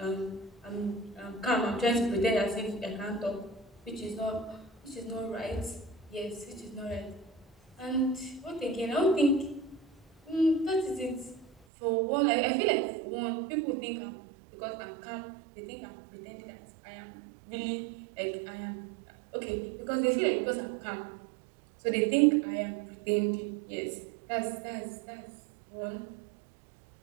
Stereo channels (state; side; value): drops out; left; at 11.7 s